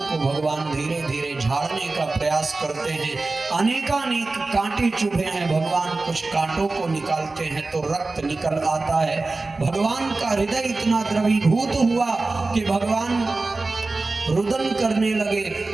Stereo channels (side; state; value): left; quieter; 3.4 dB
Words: को भगवान धीरे धीरे झाड़ने का प्रयास करते हैं। अनेकानेक कांटे चुभे हैं, भगवान कुछ कांटों को निकालते हैं तो रक्त निकल आता है। भगवान का हृदय इतना द्रवीभूत हुआ कि भगवान रुदन करने लगे